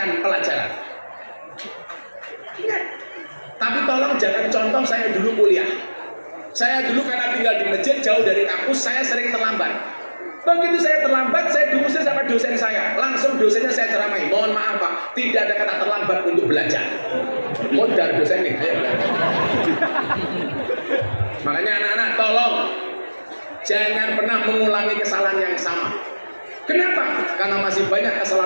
pelajaran. Ingat. Tapi tolong jangan contoh saya dulu kuliah. Saya dulu karena tinggal di masjid jauh dari kampus, saya sering terlambat. Begitu saya terlambat, saya diusir sama dosen saya. Langsung dosennya saya ceramai. Mohon maaf Pak, tidak ada kata terlambat untuk belajar. Modal dosen nih. Ayo. Makanya anak-anak tolong jangan pernah mengulangi kesalahan yang sama. Kenapa? Karena masih banyak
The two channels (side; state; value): both; inverted; correlation -1.00